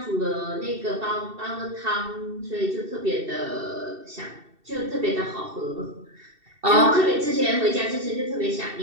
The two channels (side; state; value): left; late; 2.7 ms